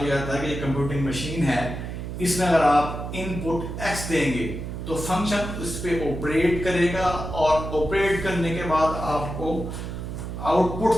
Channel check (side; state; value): right; noise; hum, 7 dB below the sound